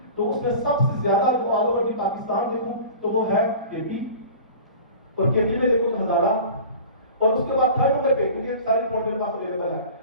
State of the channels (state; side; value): inverted; both; correlation -0.39